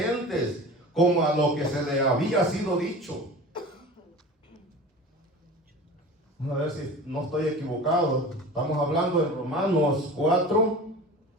como a lo que se le había sido dicho. Vamos a ver si no estoy equivocado. Estamos hablando de Romanos 4,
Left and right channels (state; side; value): normal; both; correlation 0.36